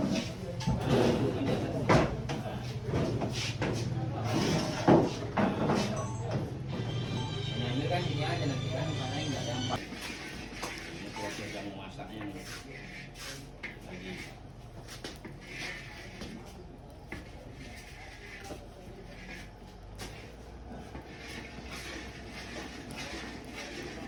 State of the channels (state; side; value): identical; both; correlation 1.00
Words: Ini kan sini aja nanti kan karena enggak gampang. Ini proses kamu masaknya nih. Lagi.